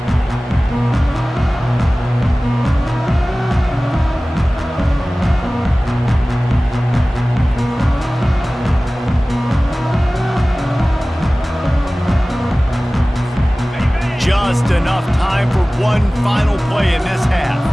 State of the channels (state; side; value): normal; both; correlation 0.97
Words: Just enough time for one final play in this half.